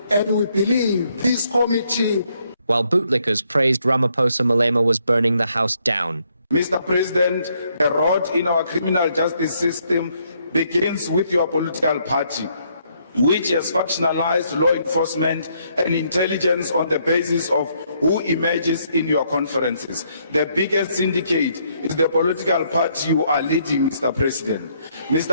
and we believe this committee. While bootlickers praised Ramaphosa, Malema was burning the house down. Mr. President, the rot in our criminal justice system begins with your political party, which has factionalized law enforcement and intelligence on the basis of who emerges in your conferences. The biggest syndicate is the political party you are leading, Mr. President.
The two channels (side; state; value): both; inverted; correlation -0.72